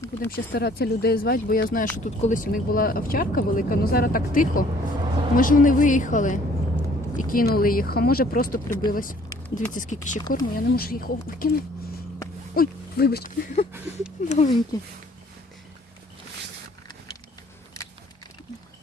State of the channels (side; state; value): both; normal; correlation 0.58